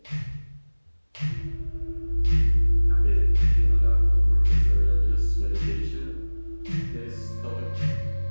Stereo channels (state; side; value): inverted; both; correlation -1.00